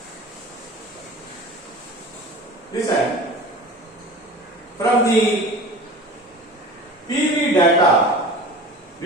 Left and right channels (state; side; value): normal; both; correlation 0.37